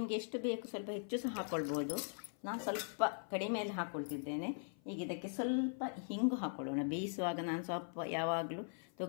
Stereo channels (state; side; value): silent; right; 51 dB below the other